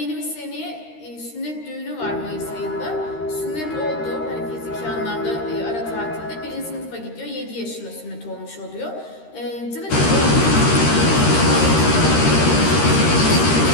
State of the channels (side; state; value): right; late; 13 ms